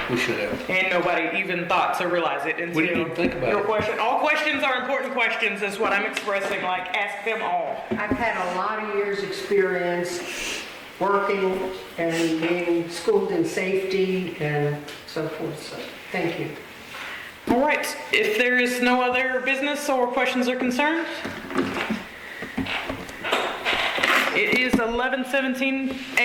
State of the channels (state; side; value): identical; both; correlation 1.00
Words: we should have. And nobody even thought to realize it until We didn't even think about your it. question. All questions are important questions is what I'm expressing, like ask them all. I've had a lot of years' experience working and being schooled in safety and so forth, so thank you. All right, if there is no other business or questions or concerns, it is 11:17